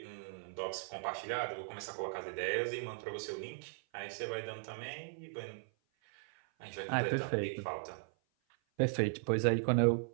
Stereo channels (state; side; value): silent; left; 53 dB below the other